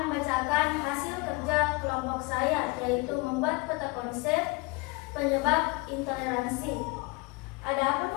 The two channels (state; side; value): quieter; right; 25.9 dB